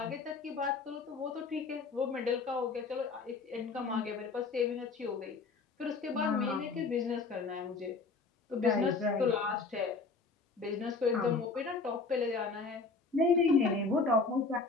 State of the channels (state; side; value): quieter; right; 4.2 dB